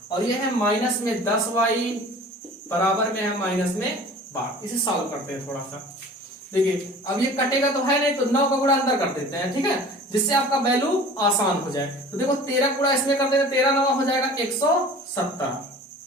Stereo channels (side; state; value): both; normal; correlation 0.43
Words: और ये है माइनस में 10y बराबर में है माइनस में 12। इसे सॉल्व करते हैं थोड़ा सा। देखिए अब ये कटेगा तो है नहीं, तो 9 का गुणा अंदर कर देते हैं। ठीक है, जिससे आपका वैल्यू आसान हो जाए। तो देखो 13 गुणा इसमें कर देते हैं, 13 9 हो जाएगा 170।